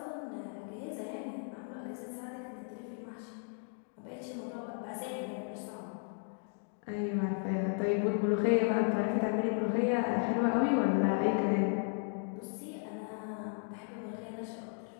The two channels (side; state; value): right; silent; 54 dB below the other